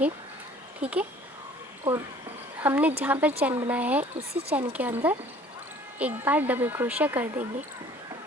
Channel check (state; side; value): normal; both; correlation 0.52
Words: ठीक है। और हमने जहाँ पर चैन बनाया है उसी चैन के अंदर एक बार डबल क्रोशिया कर देंगे